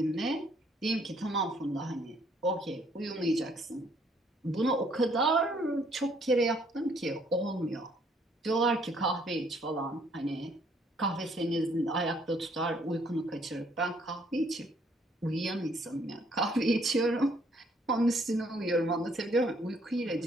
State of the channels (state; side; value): normal; both; correlation 0.65